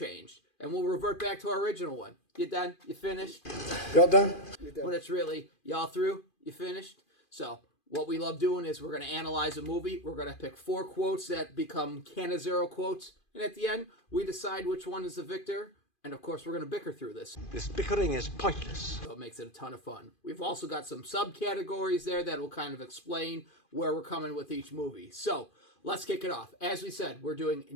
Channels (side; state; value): right; late; 2.5 ms